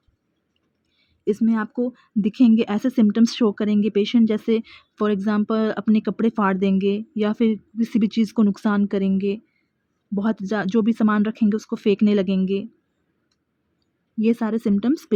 इसमें आपको दिखेंगे ऐसे सिम्टम्स शो करेंगे पेशेंट, जैसे फॉर एग्जांपल अपने कपड़े फाड़ देंगे या फिर किसी भी चीज़ को नुकसान करेंगे, बहुत जो भी सामान रखेंगे उसको फेंकने लगेंगे, ये सारे सिम्टम्स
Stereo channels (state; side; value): identical; both; correlation 1.00